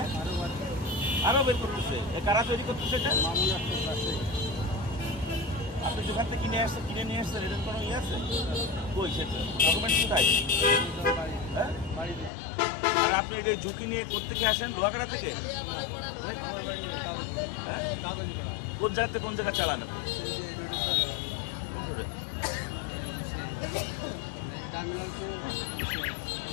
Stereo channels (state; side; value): drops out; right; at 12.3 s